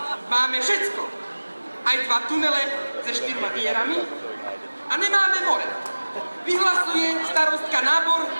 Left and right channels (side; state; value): both; inverted; correlation -1.00